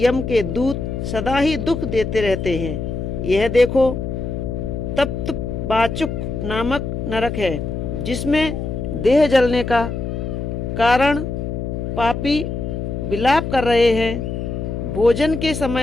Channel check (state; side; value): noise; left; hum, 4 dB below the sound